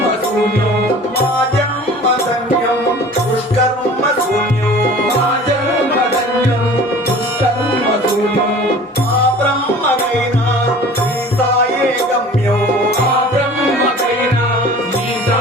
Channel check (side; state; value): both; normal; correlation 0.44